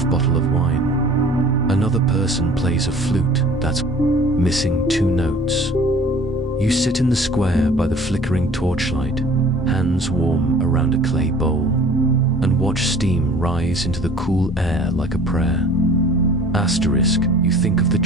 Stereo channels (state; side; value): normal; both; correlation 0.48